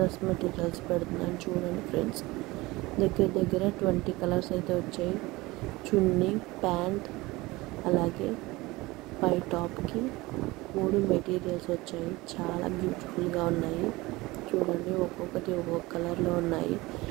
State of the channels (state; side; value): quieter; left; 21.1 dB